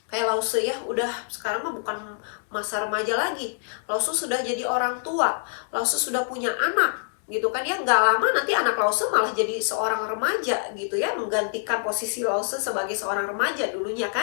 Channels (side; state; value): right; silent; digital silence